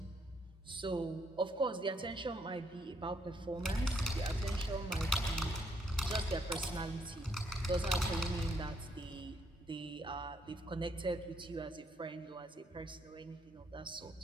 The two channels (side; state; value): both; normal; correlation 0.72